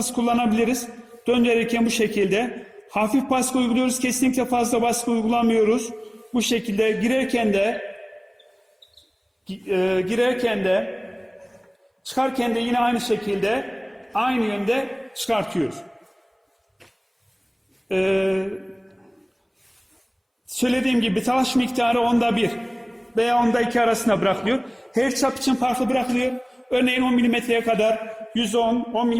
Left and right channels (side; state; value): both; identical; correlation 1.00